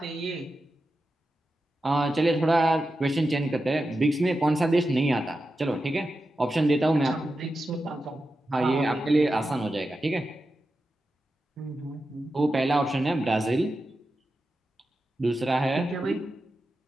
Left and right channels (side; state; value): both; normal; correlation 0.91